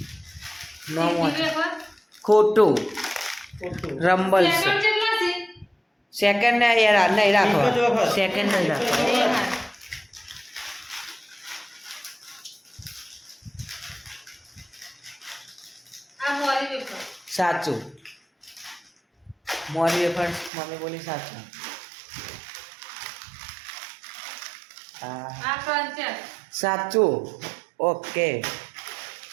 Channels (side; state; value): left; drops out; at 20.5 s